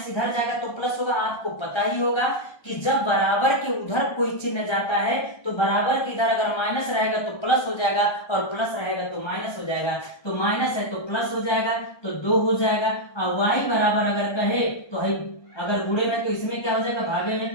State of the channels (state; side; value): late; right; 1.3 ms